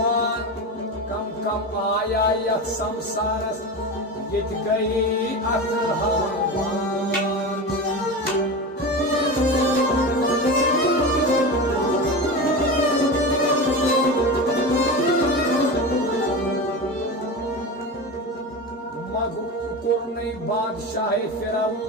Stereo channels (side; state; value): both; normal; correlation 0.25